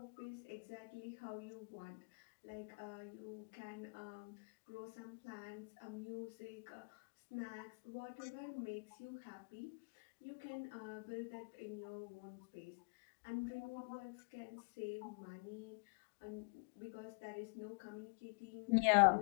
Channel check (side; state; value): right; quieter; 37.7 dB